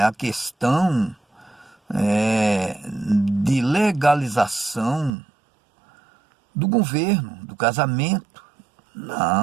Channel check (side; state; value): left; drops out; at 5.1 s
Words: a questão de legalização do governo, do casamento.